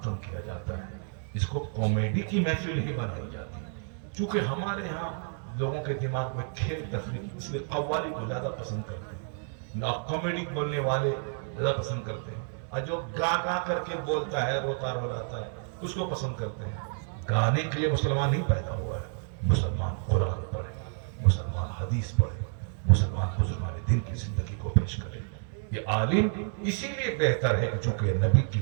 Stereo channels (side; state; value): left; silent; 58 dB below the other